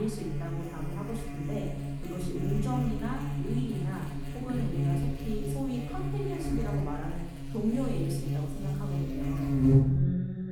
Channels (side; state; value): both; identical; correlation 1.00